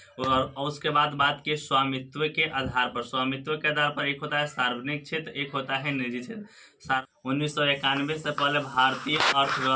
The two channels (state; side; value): identical; both; correlation 1.00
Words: और उसके बाद बात की स्वामित्व के आधार पर। स्वामित्व के आधार पर एक होता है सार्वजनिक क्षेत्र, एक होता है निजी क्षेत्र। 1991 से पहले भारतीय